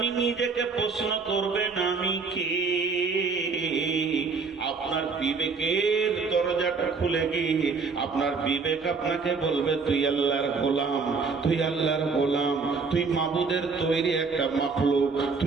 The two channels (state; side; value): quieter; left; 4.8 dB